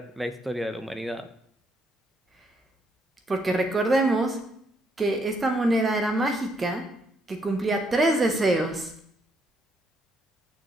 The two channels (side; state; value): both; normal; correlation 0.74